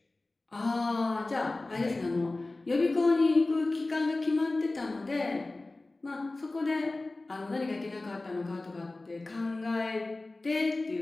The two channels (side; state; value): right; quieter; 3.0 dB